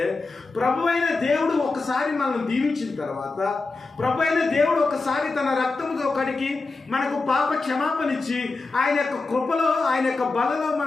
ప్రభు అయిన దేవుడు ఒకసారి మనల్ని దీవించిన తర్వాత, ప్రభు అయిన దేవుడు ఒకసారి తన రక్తముతో కడిగి మనకు పాప క్షమాపణ ఇచ్చి ఆయన యొక్క కృపలో, ఆయన యొక్క బలలో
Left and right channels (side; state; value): right; quieter; 3.7 dB